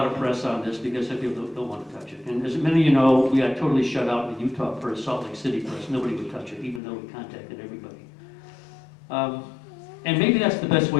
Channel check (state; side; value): drops out; right; at 6.8 s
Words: of press on this because some people don't want to touch it. And as many of you know, we got totally shut out in the Utah press, Salt Lake City press. Nobody would touch it, even though we contacted everybody. And maybe that's the best